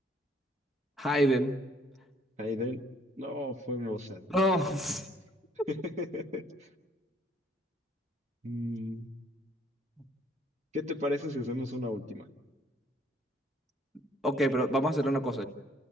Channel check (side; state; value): both; normal; correlation 0.63